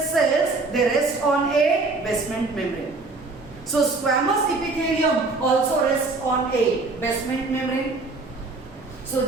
cells, they rest on a basement membrane. So squamous epithelium also rests on a basement membrane. So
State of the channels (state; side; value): quieter; left; 3.6 dB